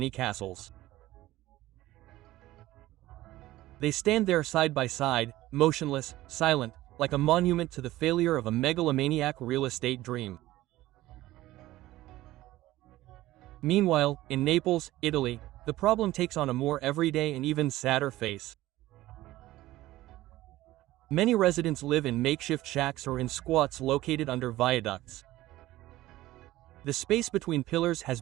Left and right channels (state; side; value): quieter; left; 16.3 dB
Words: They stand there side by side, motionless, silent, like a monument to the failure of a megalomaniac real estate dream. Meanwhile, in Naples, Italy, the problem takes on a more everyday and even sadder face. Many residents live in makeshift shacks or in squats located under viaducts. The space between pillars has